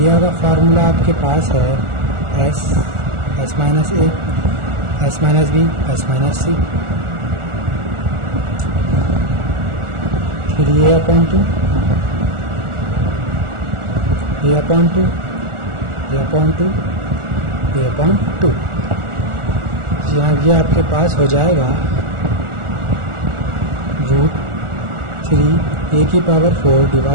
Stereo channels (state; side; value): late; left; 1.4 ms